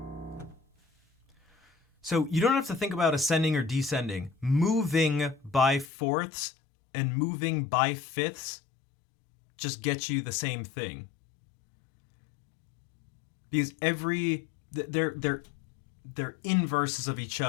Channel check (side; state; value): right; drops out; at 5.9 s